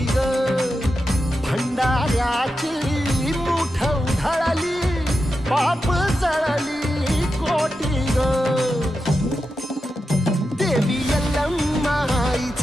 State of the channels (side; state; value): both; normal; correlation 0.89